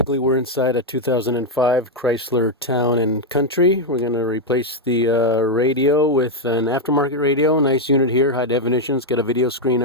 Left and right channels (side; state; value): both; normal; correlation 0.02